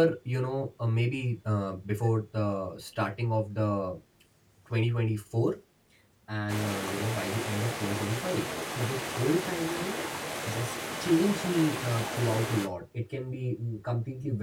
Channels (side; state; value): both; identical; correlation 1.00